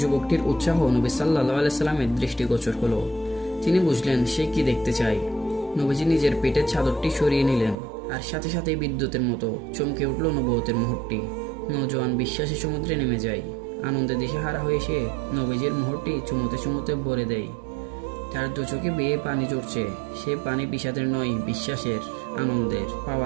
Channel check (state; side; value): drops out; left; at 7.8 s